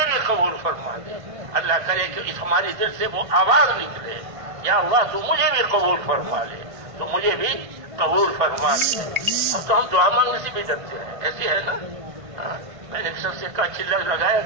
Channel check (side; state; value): left; late; 1.5 ms